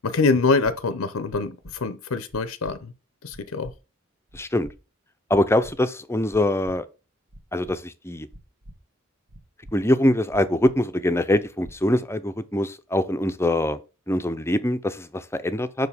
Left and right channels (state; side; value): normal; both; correlation 0.65